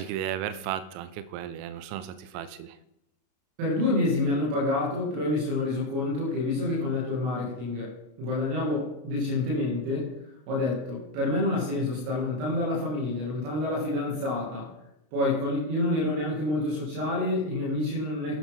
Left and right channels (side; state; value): left; late; 33 ms